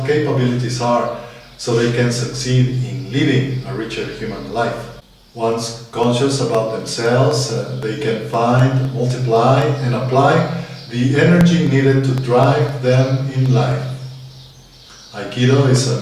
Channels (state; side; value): identical; both; correlation 1.00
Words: capabilities are, so they can succeed in living a richer human life. Once conscious about themselves, they can find, multiply, and apply the energy needed to drive them in life. Aikido is